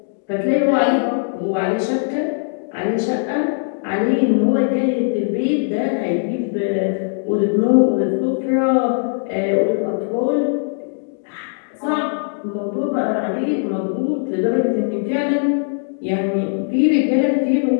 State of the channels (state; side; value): silent; right; digital silence